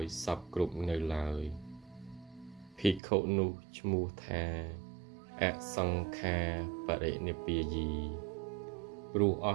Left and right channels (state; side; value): drops out; left; at 3.0 s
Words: យសពគ្រប់នៅឡើយភិក្ខុនោះឈ្មោះថាអសង្ខាបរិនិព្វាយីព្រោះអ